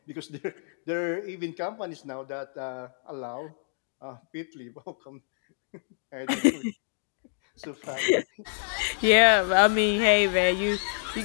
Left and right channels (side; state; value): right; silent; digital silence